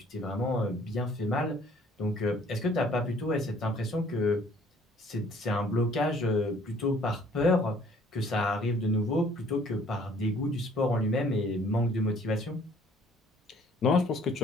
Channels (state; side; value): normal; both; correlation 0.58